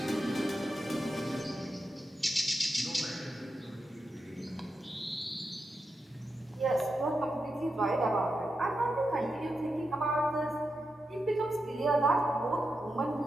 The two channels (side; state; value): both; normal; correlation 0.87